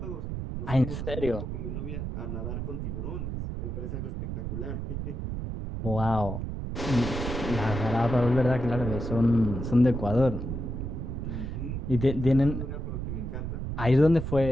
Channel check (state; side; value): noise; right; rumble, 4 dB below the sound